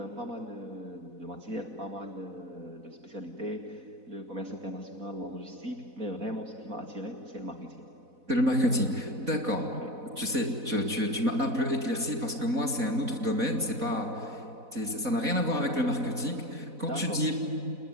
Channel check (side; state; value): left; late; 4.1 ms